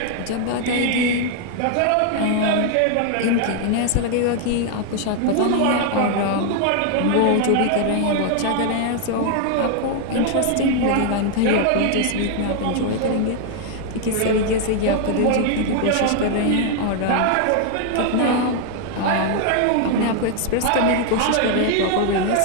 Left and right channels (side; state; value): both; different; correlation 0.00